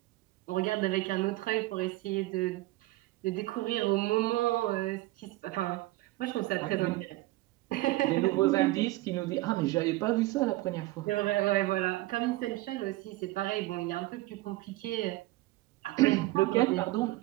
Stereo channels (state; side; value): quieter; left; 18.6 dB